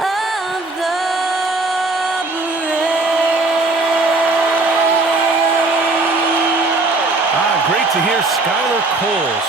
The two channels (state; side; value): quieter; left; 3.3 dB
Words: the Great to hear Skylar Cole